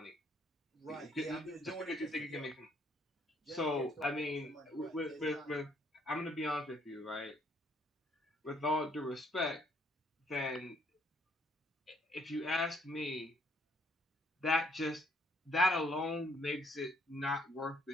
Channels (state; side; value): normal; both; correlation 0.67